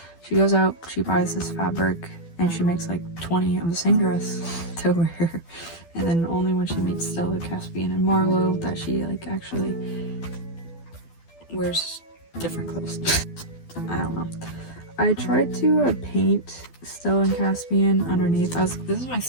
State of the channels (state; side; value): late; right; 12 ms